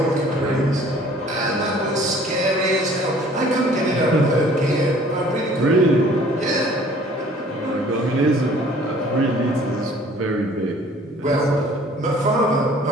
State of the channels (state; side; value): normal; both; correlation 0.53